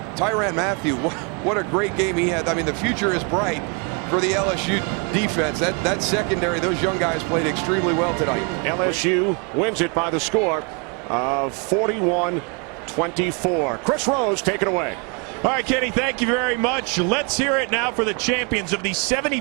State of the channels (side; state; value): left; quieter; 34.2 dB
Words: Tyrann Mathieu. What a great game he had. I mean, the future is bright for the LSU defense. That secondary, those young guys played extremely well tonight. LSU wins it by the score of 41-24. Chris Rose, take it away. All right, Kenny, thank you very much. Let's hear it now for the champions of the